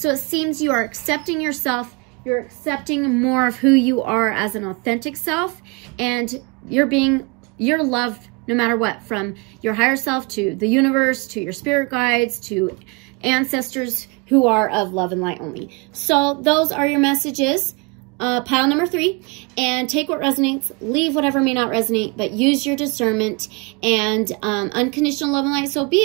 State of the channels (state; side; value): quieter; left; 29.0 dB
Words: it seems you are accepting yourself. You're accepting more of who you are as an authentic self, and you're loved no matter what, from your higher self to the universe, to your spirit guides, to ancestors who are of love and light only. So those are your messages. Pile number 3, and take what resonates, leave whatever may not resonate, but use your discernment and unconditional love and light, so be